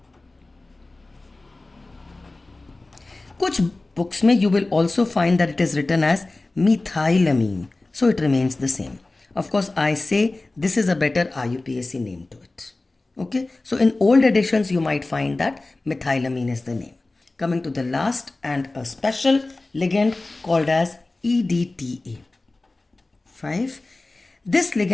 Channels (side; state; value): right; quieter; 3.1 dB